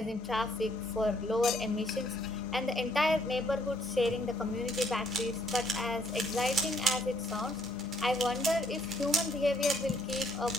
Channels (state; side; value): normal; both; correlation 0.68